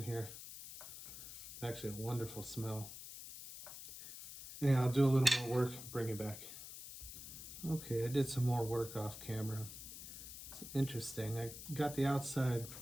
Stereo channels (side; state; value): left; noise; hiss, 11 dB below the sound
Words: here. Actually a wonderful smell. Yeah, I'll do a little more work, bring it back. Okay, I did some more work off camera. It's interesting. I got the outside